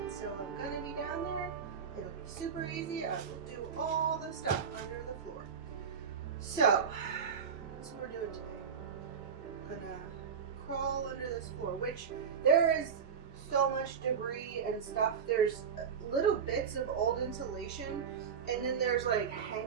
so I'm gonna be down there. It'll be super easy. I will do all the stuff under the floor. So that's what we're doing today. I'm gonna crawl under this floor, which there is so much debris and stuff. There's little bits of old insulation, and then there's like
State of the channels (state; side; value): quieter; left; 6.8 dB